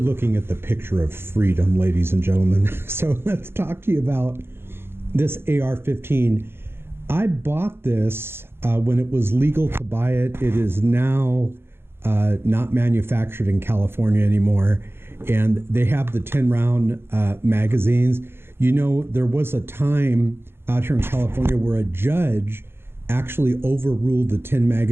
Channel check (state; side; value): late; left; 0.11 ms